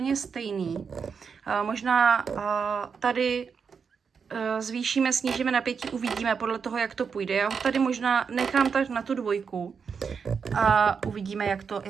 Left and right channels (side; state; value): left; quieter; 6.1 dB